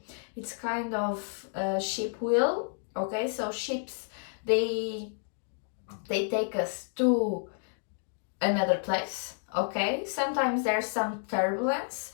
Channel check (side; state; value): right; silent; digital silence